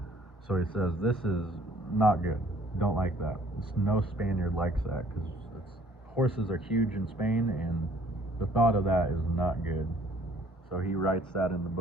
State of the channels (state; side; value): normal; both; correlation 0.58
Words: So he says, this is not good. Don't like that. No Spaniard likes that, because horses are huge in Spain, and the thought of that is not good. So he writes that in the